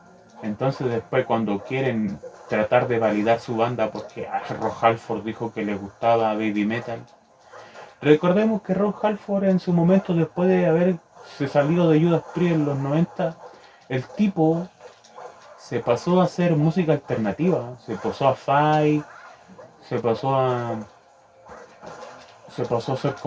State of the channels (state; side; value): identical; both; correlation 1.00